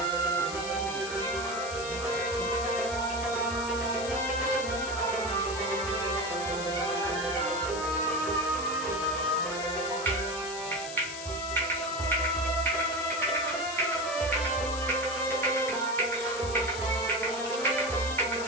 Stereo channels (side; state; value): left; noise; hiss, 9 dB below the sound